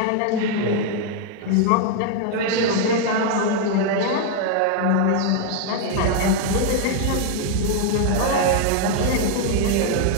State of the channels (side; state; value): both; different; correlation 0.00